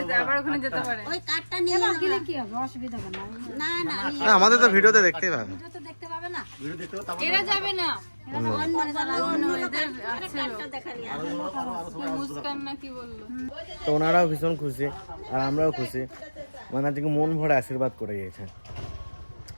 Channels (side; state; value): both; inverted; correlation -1.00